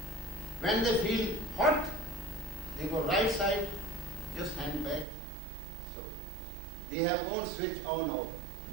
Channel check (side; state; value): left; drops out; at 5.1 s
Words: When they feel hot, they go right side, just hand back. So they have own switch on out.